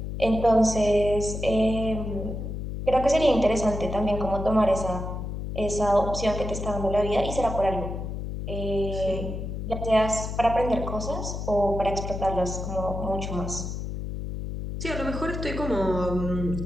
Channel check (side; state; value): left; noise; hum, 5 dB below the sound